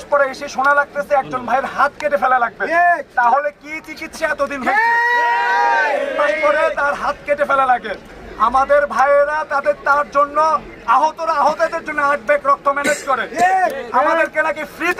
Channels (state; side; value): identical; both; correlation 1.00